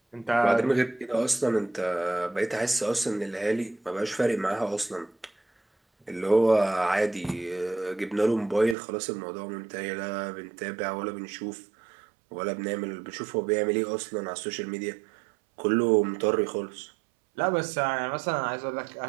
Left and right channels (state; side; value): drops out; left; at 8.8 s